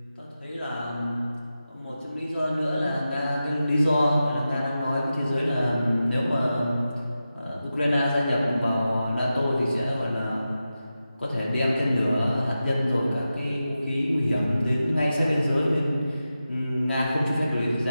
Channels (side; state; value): both; inverted; correlation -0.92